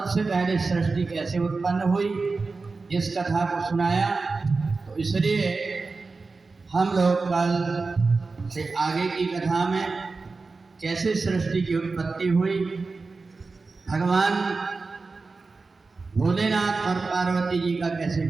पहले सृष्टि कैसे उत्पन्न हुई इस कथा को सुनाया। तो इसलिए हम लोग कल से आगे की कथा में कैसे सृष्टि की उत्पत्ति हुई, भगवान भोलेनाथ और पार्वती जी का कैसे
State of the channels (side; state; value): left; quieter; 4.0 dB